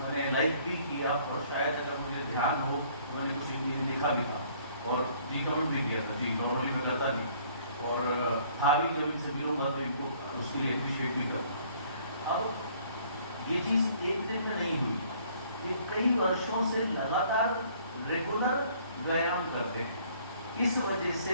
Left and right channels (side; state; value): both; inverted; correlation -0.59